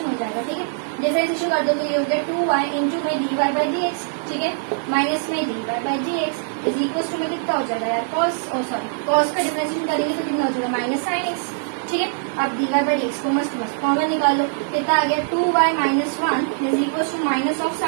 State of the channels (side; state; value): left; silent; digital silence